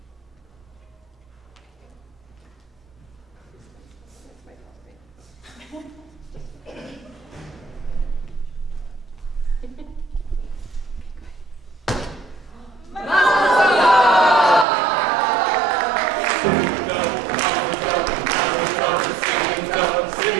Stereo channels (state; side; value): drops out; left; at 14.7 s